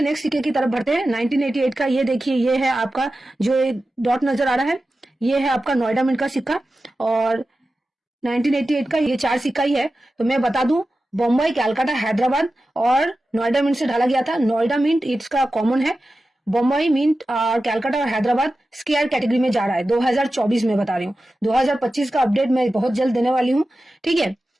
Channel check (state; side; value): normal; both; correlation 0.94